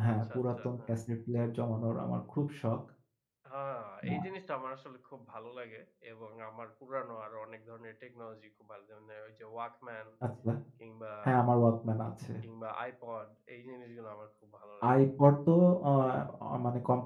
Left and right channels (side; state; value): both; identical; correlation 1.00